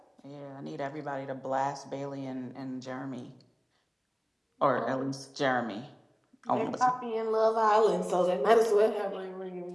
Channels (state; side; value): identical; both; correlation 1.00